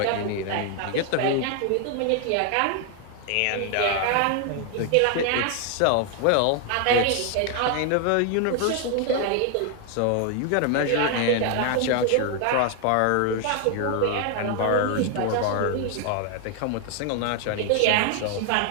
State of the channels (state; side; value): different; both; correlation 0.00